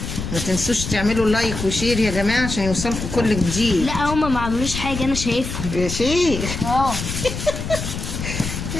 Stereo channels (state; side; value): noise; left; rumble, 6 dB below the sound